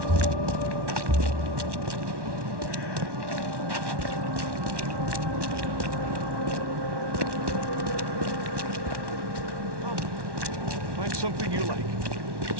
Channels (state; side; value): late; left; 1.1 ms